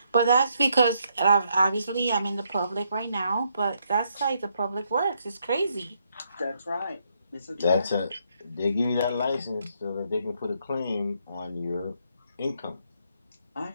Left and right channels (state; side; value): inverted; both; correlation -0.75